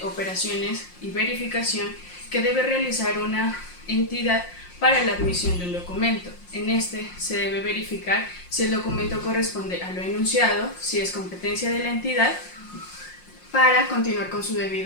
operaciones y verificación que debe realizar una entidad para la admisión de un documento. En este se debe verificar si el documento corresponde a lo enunciado, si es competencia de la entidad, para continuar con su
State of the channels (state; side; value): late; right; 5.6 ms